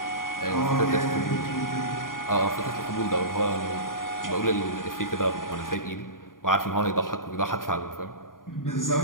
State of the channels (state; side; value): late; right; 0.90 ms